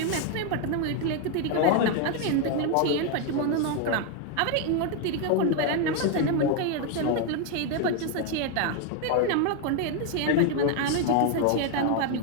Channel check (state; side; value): different; both; correlation 0.01